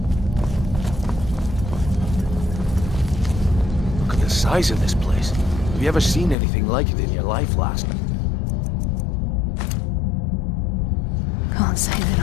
Look at the size of this place. Have you ever seen anything like it in your life, lass? Can't say that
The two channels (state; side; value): drops out; right; at 6.4 s